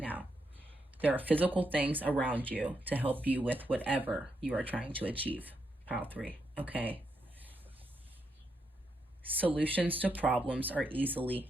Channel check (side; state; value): both; normal; correlation 0.81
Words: There are physical things around you to help you with whatever you are trying to achieve. Pile 3, okay? Solutions to problems are easily